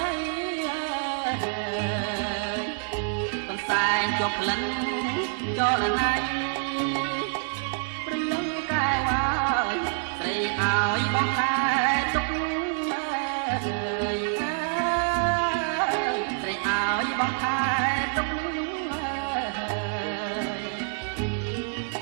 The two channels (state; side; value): silent; left; 60 dB below the other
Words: ីកំសែងជាប់ក្លិនចលណៃព្រលឹងកែវហើយស្រីឲ្យបងខែទុកស្រីឲ្យបងខែទុក